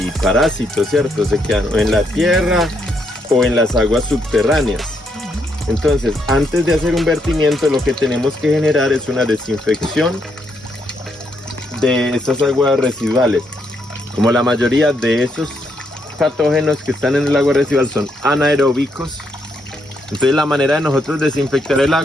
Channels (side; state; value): both; normal; correlation 0.77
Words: parásitos, ¿cierto? Se quedan o en la tierra o en las aguas subterráneas. Entonces, antes de hacer un vertimiento, lo que tenemos que generar es una desinfección de estas aguas residuales. Como la mayoría de esos patógenos que están en el agua residual son anaeróbicos, entonces la manera de nosotros desinfectar el